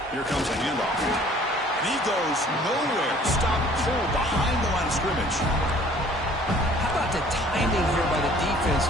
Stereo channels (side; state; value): both; normal; correlation 0.54